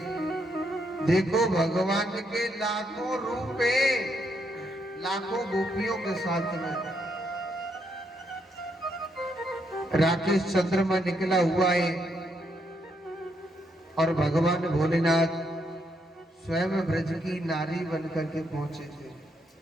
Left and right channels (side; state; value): both; normal; correlation 0.77